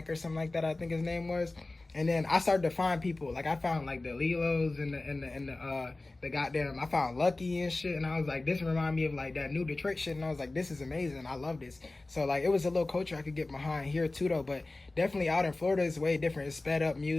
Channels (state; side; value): quieter; right; 3.0 dB